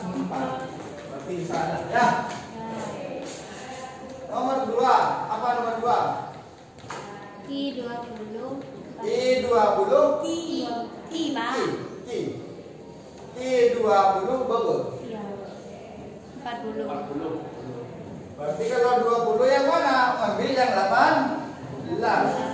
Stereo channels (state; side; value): identical; both; correlation 1.00